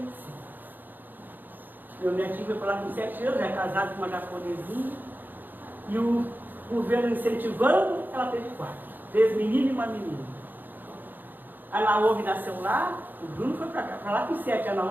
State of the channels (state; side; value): late; left; 0.089 ms